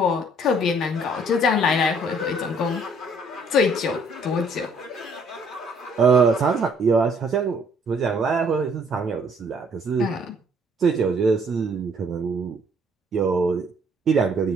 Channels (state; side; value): normal; both; correlation 0.62